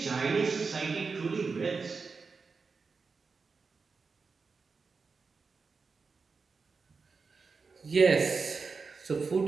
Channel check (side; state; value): left; quieter; 4.7 dB